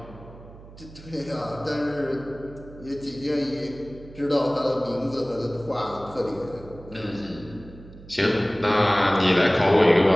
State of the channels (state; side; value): noise; right; hum, 18 dB below the sound